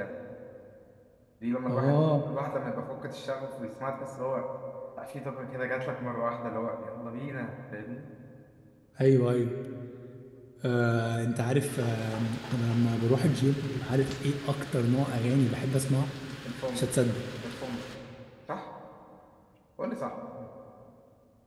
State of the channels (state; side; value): identical; both; correlation 1.00